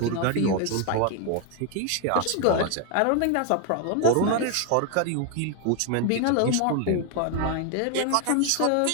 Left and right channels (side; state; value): both; different; correlation 0.01